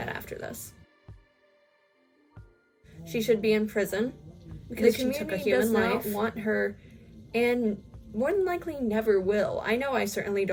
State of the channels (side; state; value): both; identical; correlation 1.00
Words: after this. She should be in prison because she took a human life. Does not want her, and more than likely never will. I know I certainly